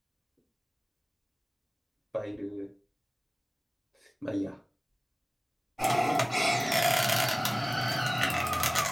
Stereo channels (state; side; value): identical; both; correlation 1.00